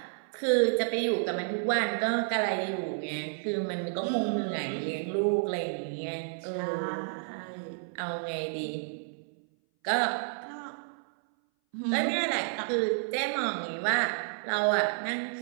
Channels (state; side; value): silent; left; 57 dB below the other